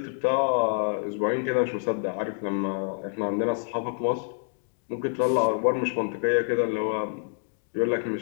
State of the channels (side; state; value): right; silent; digital silence